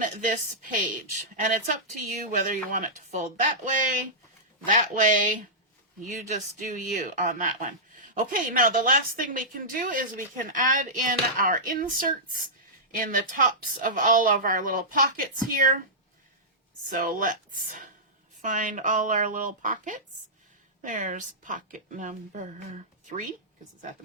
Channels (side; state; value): both; normal; correlation -0.14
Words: this page. And it's up to you whether you want it to fold that way. You just do you on that one. Okay, now the last thing we can do is we can add in our inserts in the tops of all of our little pockets here. So let's find all our little pockets. There's pocket number 3, because it's at the